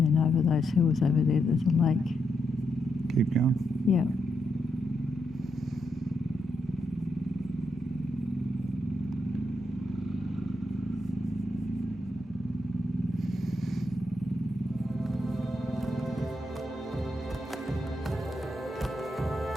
then over those hills over there, there's a lake. Keep going. Yeah.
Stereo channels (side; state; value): both; normal; correlation 0.81